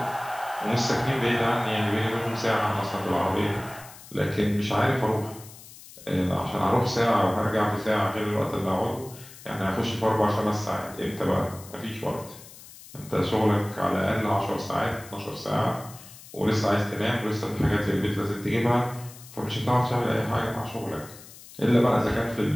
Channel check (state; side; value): noise; left; hiss, 18 dB below the sound